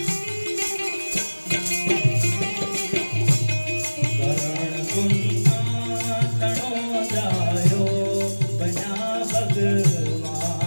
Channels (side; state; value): both; inverted; correlation -1.00